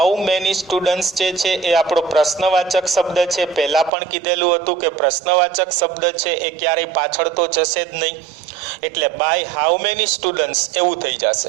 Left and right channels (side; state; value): left; drops out; at 3.9 s